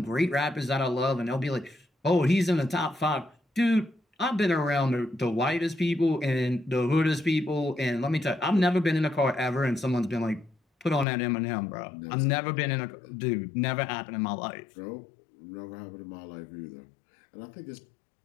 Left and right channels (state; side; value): drops out; right; at 11.1 s